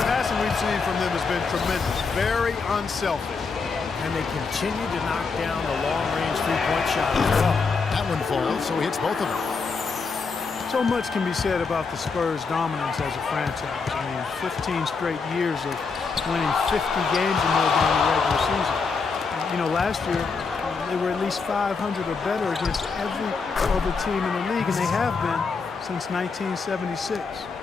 passing we've seen from them has been tremendous. Very unselfish. And they continue to knock down the long-range three-point shot as well. That one falls, so he hits both of them. So much can be said about the Spurs' dominance as a franchise. I mean, 15 straight years of winning 50 games or more during the regular season. You know, last year, They were at least 500 or better against every other team in the league, and they have been since 1976.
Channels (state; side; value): quieter; right; 4.8 dB